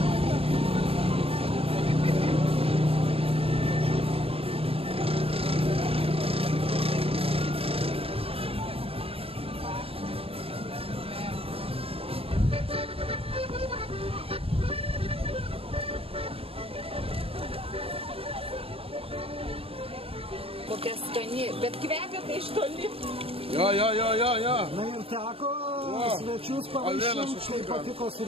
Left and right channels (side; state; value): left; late; 0.27 ms